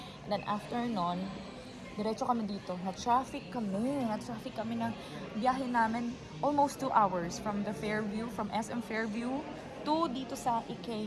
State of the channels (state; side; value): identical; both; correlation 1.00